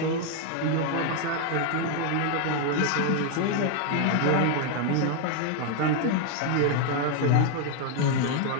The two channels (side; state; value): both; different; correlation 0.00